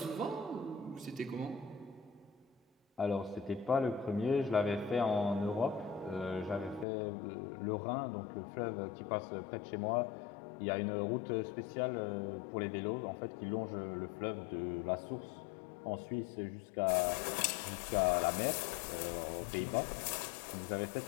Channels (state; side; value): drops out; right; at 6.9 s